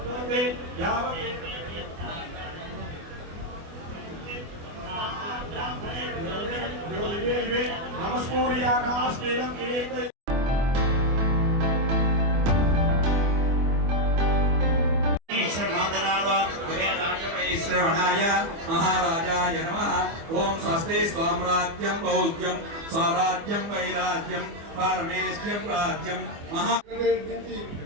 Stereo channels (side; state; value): left; late; 24 ms